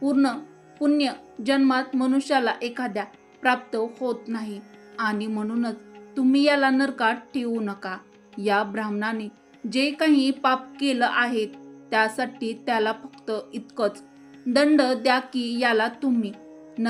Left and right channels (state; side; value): identical; both; correlation 1.00